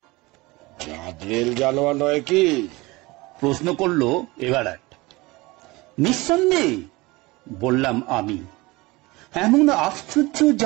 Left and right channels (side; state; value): left; quieter; 22.3 dB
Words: জাদরেল জানোয়ার নয় কি? প্রশ্ন করলো এভারেট। নিঃসন্দেহে, বললাম আমি। এমন আশ্চর্য